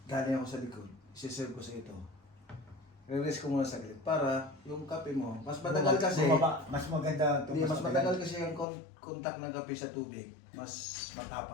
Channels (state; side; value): drops out; right; at 8.7 s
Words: galing ako sa likod, isi-serve ko sa ito. Release ko muna saglit para yung kape mo, mas matagal kasi, Bumaba. Mas maganda. hindi, mas matagal kasi yung contact ng kape sa tubig, mas